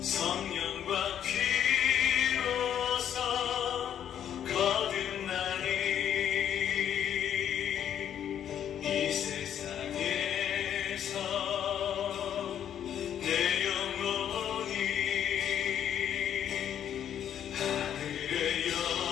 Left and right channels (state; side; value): quieter; right; 9.7 dB